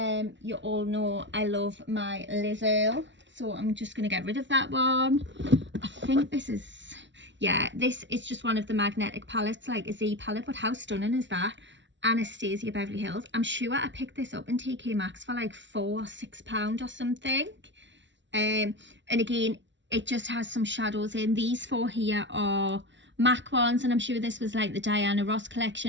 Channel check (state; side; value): late; left; 0.53 ms